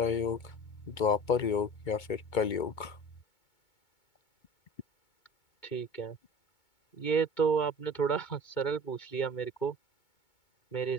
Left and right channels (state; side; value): late; right; 2.2 ms